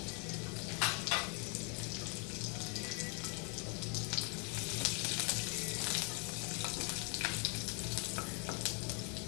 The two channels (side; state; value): right; quieter; 36.0 dB